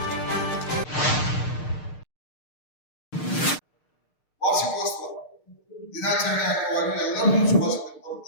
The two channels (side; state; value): right; late; 6.6 ms